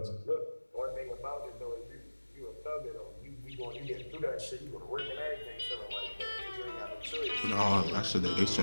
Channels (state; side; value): inverted; both; correlation -1.00